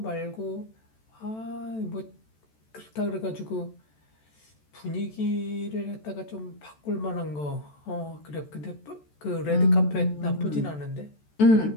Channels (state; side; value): late; right; 14 ms